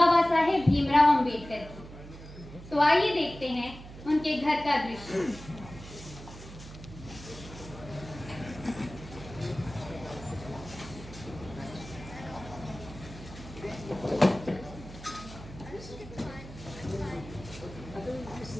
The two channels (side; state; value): right; noise; hum, 15 dB below the sound